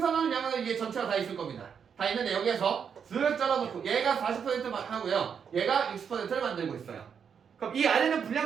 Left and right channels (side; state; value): left; quieter; 7.1 dB